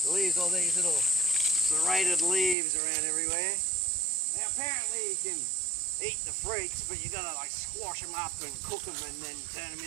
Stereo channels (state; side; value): drops out; left; at 2.6 s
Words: leaves all these little serrated leaves around everywhere. Now apparently you can eat the fruits, but you gotta like squash them up and cook them and then turn them